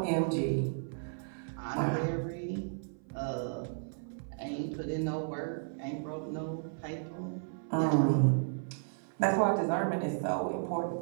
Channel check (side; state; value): left; silent; 55 dB below the other